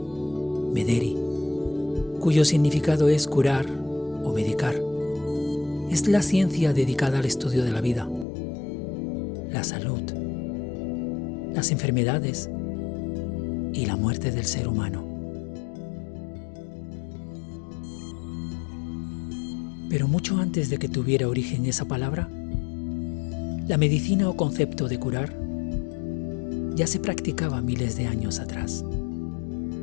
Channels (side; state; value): right; drops out; at 8.2 s